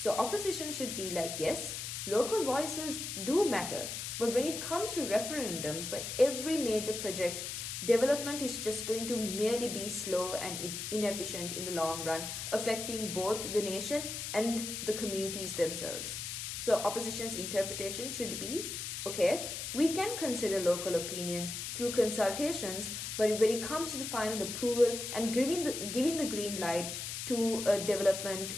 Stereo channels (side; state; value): left; noise; hiss, 5 dB below the sound